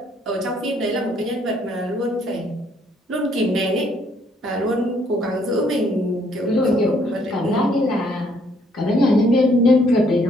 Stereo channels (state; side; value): normal; both; correlation 0.67